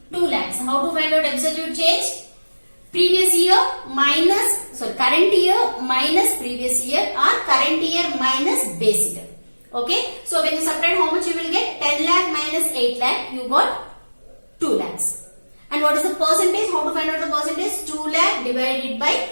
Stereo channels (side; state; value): both; inverted; correlation -1.00